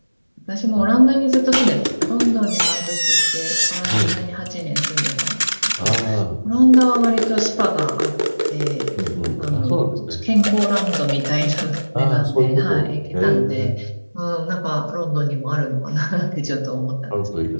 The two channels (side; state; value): both; inverted; correlation -1.00